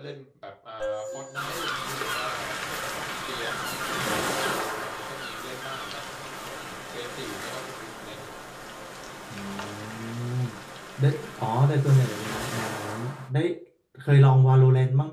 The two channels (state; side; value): identical; both; correlation 1.00